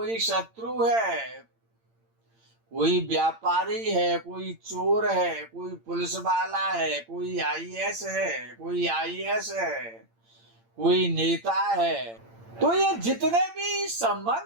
शत्रु है, कोई व्यापारी है, कोई चोर है, कोई पुलिस वाला है, कोई आईएएस है, कोई आईएएस है, कोई नेता है। तो ये जितने भी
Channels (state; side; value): late; left; 8.8 ms